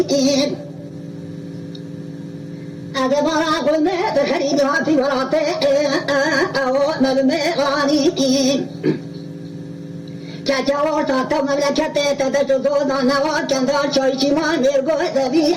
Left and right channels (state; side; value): identical; both; correlation 1.00